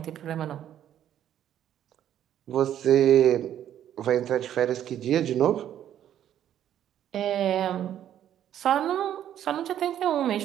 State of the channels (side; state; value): left; quieter; 10.8 dB